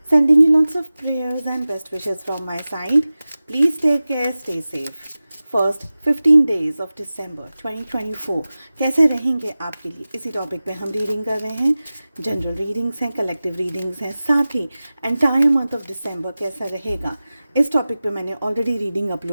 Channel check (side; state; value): both; inverted; correlation -0.96